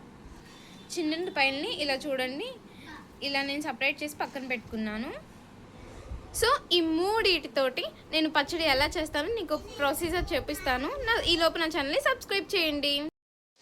చిన్నుల్లిపాయల్ని ఇలా చూడండి, ఇలా నేను సపరేట్ చేసి పక్కన పెట్టుకున్నాను. సో ఈ మూడిటితోటి నేను పచ్చడి ఎలా చేస్తానో నీకు ప్రొసీజర్ చూపిస్తాను. ఈ లోపు నా ఛానల్ని సబ్స్క్రైబ్ చేయండి.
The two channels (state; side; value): identical; both; correlation 1.00